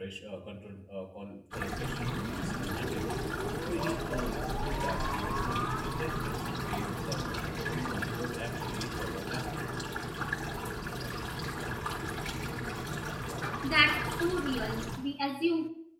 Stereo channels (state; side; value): identical; both; correlation 1.00